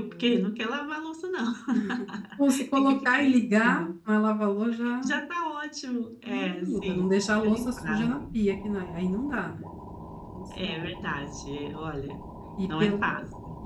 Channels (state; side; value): identical; both; correlation 1.00